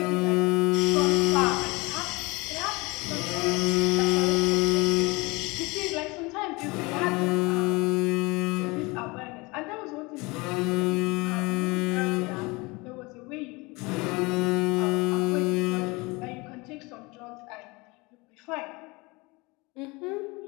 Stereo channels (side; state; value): right; quieter; 25.1 dB